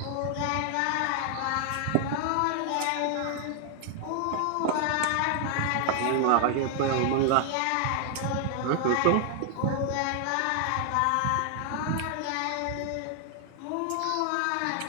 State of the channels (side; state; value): both; different; correlation 0.00